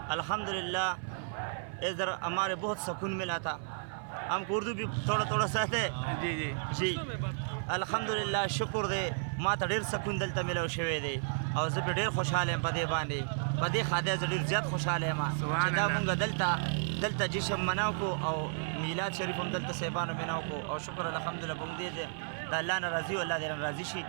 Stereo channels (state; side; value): silent; left; 56 dB below the other